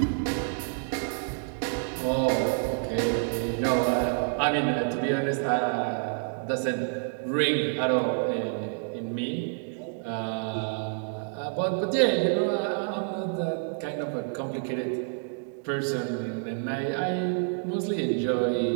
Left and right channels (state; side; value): silent; left; digital silence